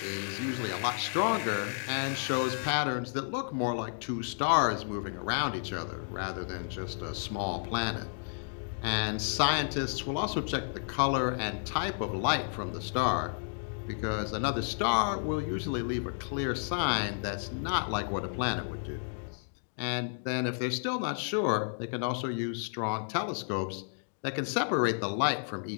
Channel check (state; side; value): silent; right; digital silence